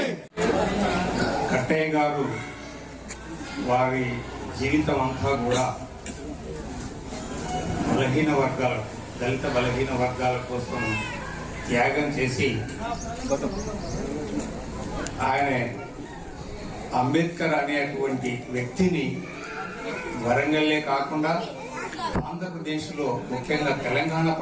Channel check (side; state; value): both; identical; correlation 1.00